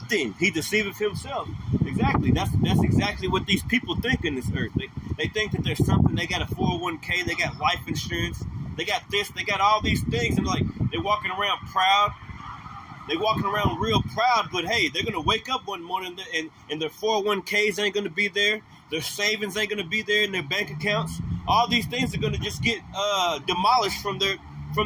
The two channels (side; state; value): both; identical; correlation 1.00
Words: he deceiveth himself. Exactly. That's exactly what these people think in this earth. They think that there's something. They got a 401k. They got life insurance. They got this. They got all these things. And like, they're walking around proud. They're walking around real proud. But hey, they're going to wake up one morning and their 401ks ain't going to be there. Their savings ain't going to be there in their bank accounts. All these things are going to just get demolished from